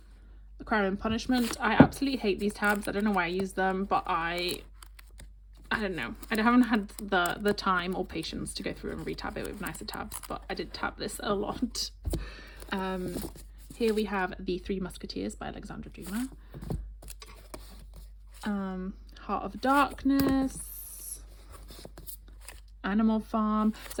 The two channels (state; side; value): identical; both; correlation 1.00